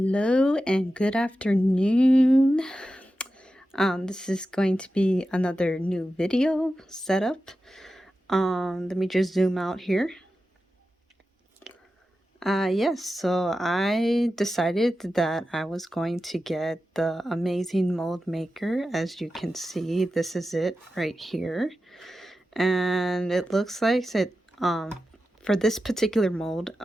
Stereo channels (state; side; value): normal; both; correlation 0.92